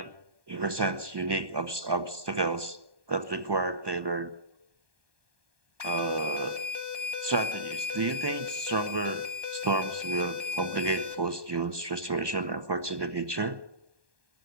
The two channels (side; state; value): left; late; 1.2 ms